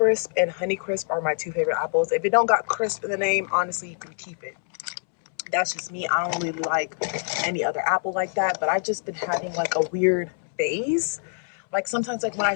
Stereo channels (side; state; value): right; silent; 62 dB below the other